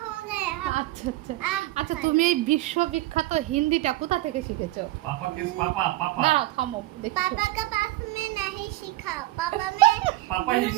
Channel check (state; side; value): quieter; left; 17.1 dB